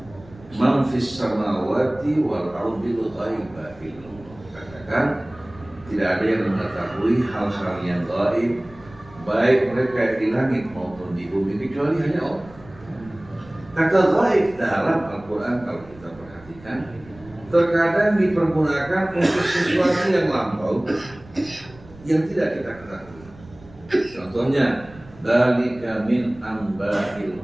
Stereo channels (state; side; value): noise; right; rumble, 22 dB below the sound